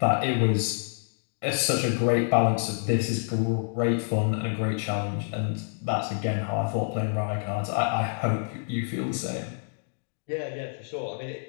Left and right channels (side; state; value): right; silent; digital silence